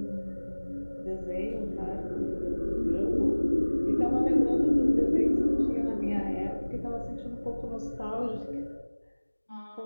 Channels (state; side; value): inverted; both; correlation -1.00